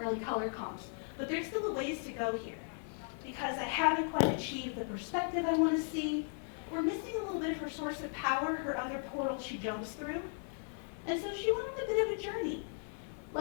early color comps. But there's still a ways to go here, because I haven't quite achieved the perspective I want to see. We're missing a little bit of her source of power, her other portal she jumps through. And so she went on a bit of a journey.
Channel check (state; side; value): silent; right; 53 dB below the other